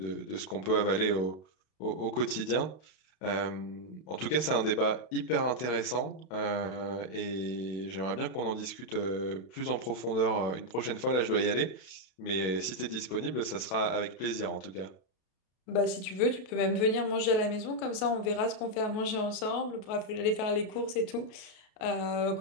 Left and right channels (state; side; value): late; right; 32 ms